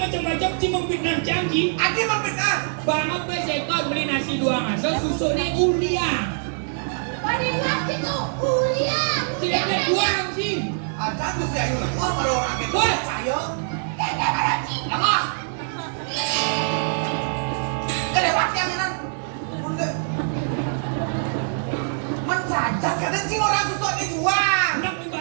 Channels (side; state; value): left; silent; digital silence